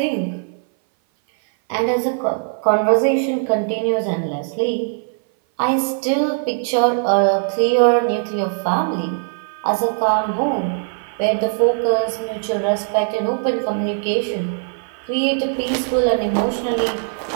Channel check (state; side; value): silent; left; 59 dB below the other